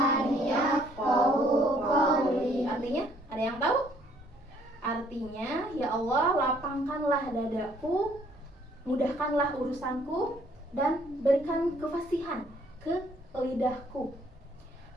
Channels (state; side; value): normal; both; correlation 0.63